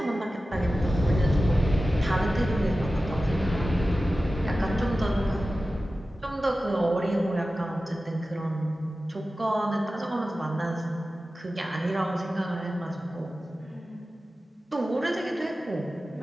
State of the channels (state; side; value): normal; both; correlation 0.95